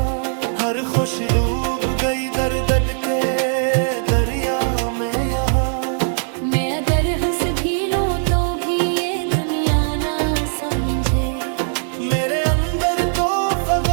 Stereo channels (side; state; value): left; silent; digital silence